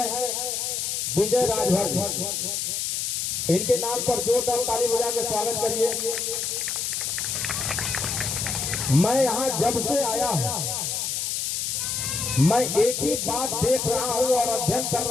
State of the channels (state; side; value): noise; left; hiss, 1 dB below the sound